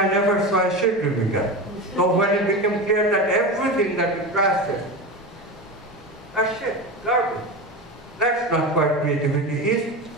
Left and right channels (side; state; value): both; normal; correlation 0.24